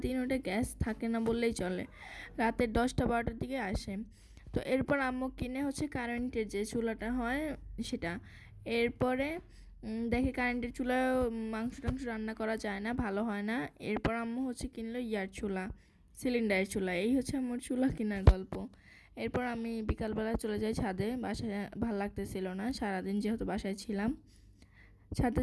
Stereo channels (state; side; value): identical; both; correlation 1.00